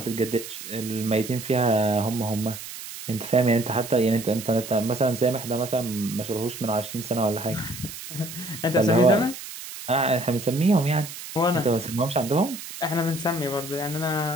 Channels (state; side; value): noise; right; hiss, 11 dB below the sound